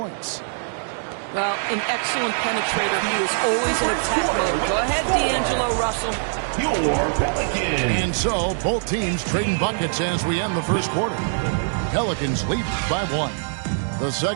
Well, an excellent penetrator. He is always in attack mode. Go ahead, D'Angelo Russell. And so, both teams trading buckets as we end the first quarter. Pelicans lead by 1. The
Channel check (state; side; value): silent; left; digital silence